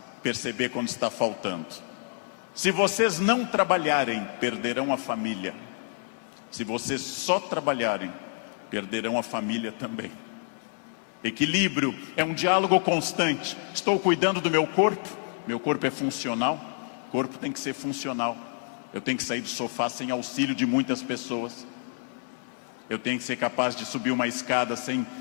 perceber quando está faltando. Se vocês não trabalharem, perderão a família. Se vocês só trabalharem, perderão a família também. Equilíbrio é um diálogo constante. Estou cuidando do meu corpo é funcional, o corpo tem que ser funcional. Eu tenho que sair do sofá sem auxílio de muitas pessoas. Eu tenho que ser capaz de subir uma escada sem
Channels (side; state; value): right; silent; digital silence